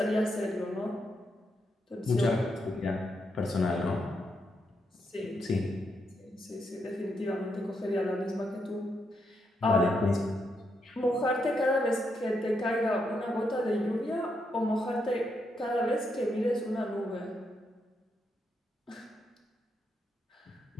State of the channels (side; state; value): both; normal; correlation 0.81